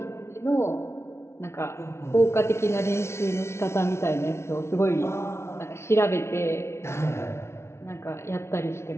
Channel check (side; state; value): right; late; 0.13 ms